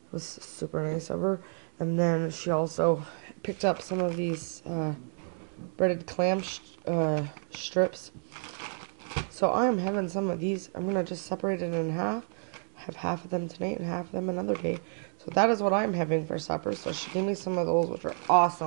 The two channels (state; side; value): silent; left; 58 dB below the other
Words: was super nice of her. And then she also picked up some of these breaded clam strips. So I am having some of these. I'm going to just separate it in half, have half of them tonight and half of them another day. So that is what I'm having for supper. So she gave me some of those, which are